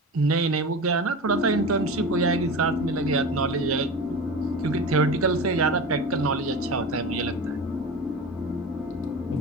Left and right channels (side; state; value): both; normal; correlation 0.30